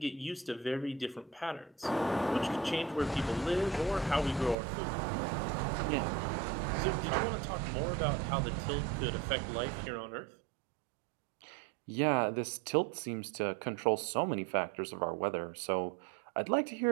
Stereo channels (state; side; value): drops out; left; at 4.5 s